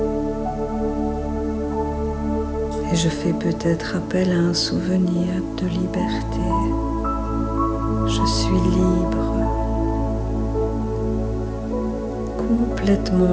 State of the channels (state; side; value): identical; both; correlation 1.00